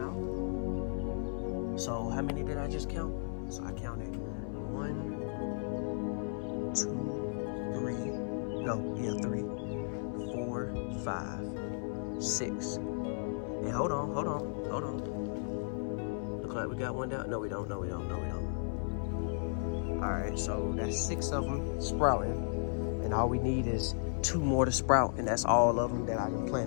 out. So how many did I just count? So I counted 1, 2, 3, 4, 5, 6. And hold on. Look like we got one down. No, we don't. All right, so that's 6 of them sprouting. And all we need is 2 more to sprout. And that's all of them that I can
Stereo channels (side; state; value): right; silent; 55 dB below the other